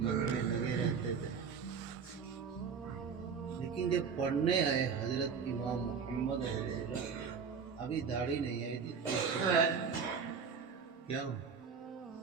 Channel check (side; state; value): left; quieter; 6.1 dB